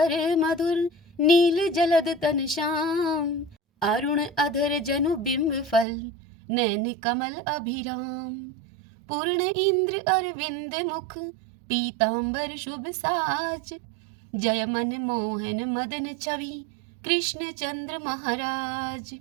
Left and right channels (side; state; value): left; drops out; at 5.9 s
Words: मधुर नील जलद तन श्याम अरुण अधर जनु बिंब फल नैन कमल अभिराम पूर्ण इंद्र अरविंद मुख पीतांबर शुभ साज जय मन मोहन मदन छवि कृष्ण चंद्र महाराज